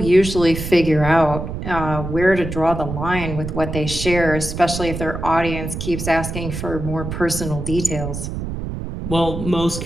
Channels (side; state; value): right; noise; rumble, 6 dB below the sound